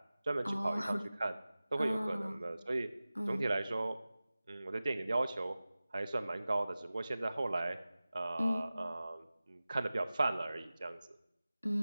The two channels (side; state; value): both; inverted; correlation -0.97